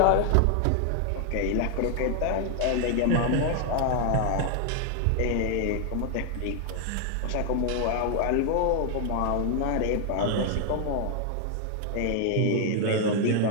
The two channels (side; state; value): both; different; correlation 0.00